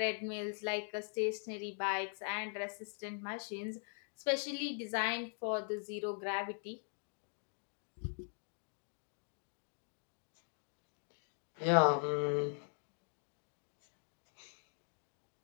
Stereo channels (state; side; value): silent; right; 50 dB below the other